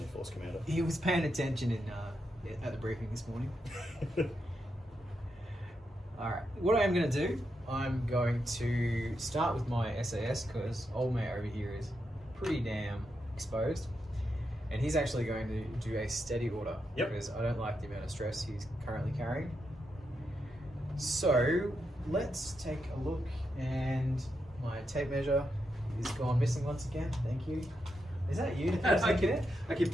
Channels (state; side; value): normal; both; correlation 0.84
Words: your force commander. He was paying attention at the briefing this morning. Alright, what I am going to do, I'm going to start with my SAS because old mate over here is pretty damn exposed. And he's actually going to do a steady order because I don't like the amount of stress he's currently carrying. So let's take a look, and my tape measure is gone missing once again. Thank you. Is that you? I keep